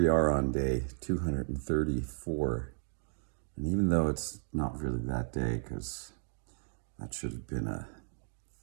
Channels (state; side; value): silent; left; digital silence